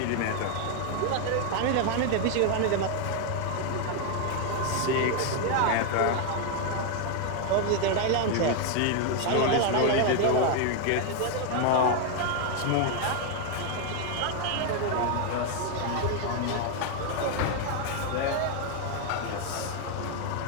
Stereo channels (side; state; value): both; different; correlation 0.01